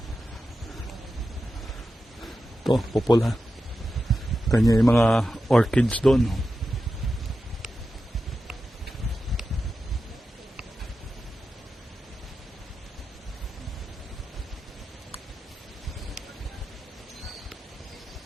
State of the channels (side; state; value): both; normal; correlation 0.91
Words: Ito, pupula. Kanya yung mga orchids doon.